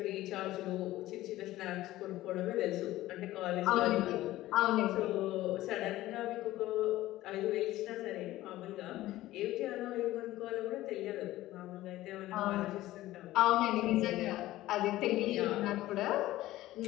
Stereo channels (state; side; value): quieter; right; 15.9 dB